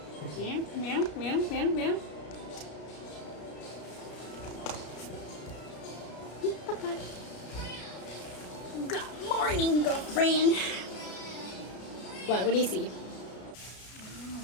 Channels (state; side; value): late; right; 33 ms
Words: Meow, meow, meow, meow, meow. Papa. Good morning, girlfriend. What do you see?